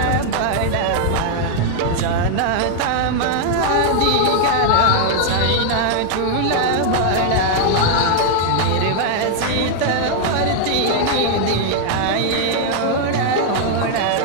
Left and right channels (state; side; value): different; both; correlation 0.00